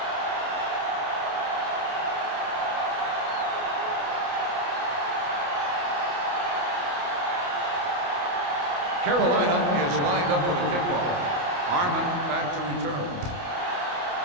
Carolina is lined up for the kickoff. Harmon back to return.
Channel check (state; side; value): late; left; 28 ms